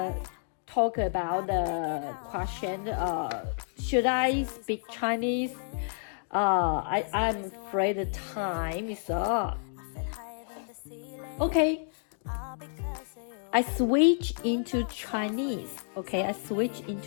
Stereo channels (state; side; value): silent; right; digital silence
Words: talk about the question. Should I speak Chinese? I'm afraid the time is up. Okay, I switch into Chinese. Okay, I switch